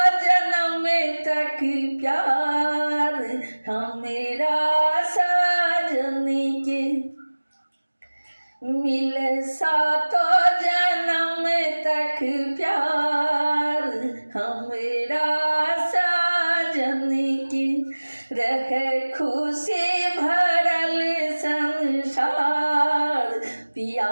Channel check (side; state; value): both; inverted; correlation -1.00